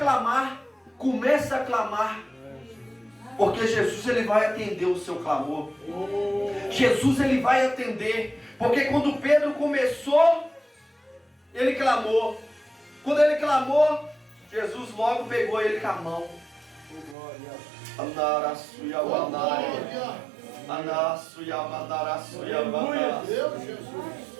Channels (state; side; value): drops out; left; at 17.2 s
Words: Começa a clamar. Porque Jesus ele vai atender o seu clamor. Jesus ele vai atender. Porque quando Pedro começou, ele clamou. Quando ele clamou, Jesus logo pegou ele com a mão.